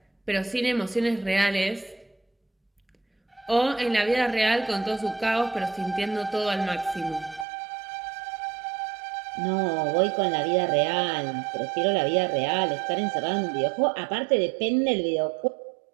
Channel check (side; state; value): left; drops out; at 7.5 s